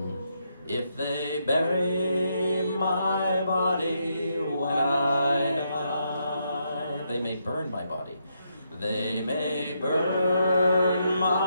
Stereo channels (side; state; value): both; inverted; correlation -0.79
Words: If they bury my body when I die. They may burn my body. They may burn